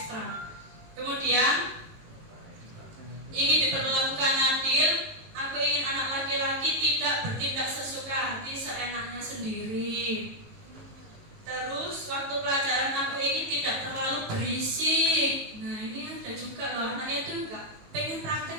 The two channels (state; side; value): late; left; 18 ms